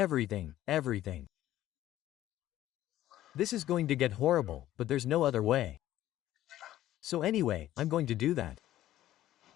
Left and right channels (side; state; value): right; quieter; 13.6 dB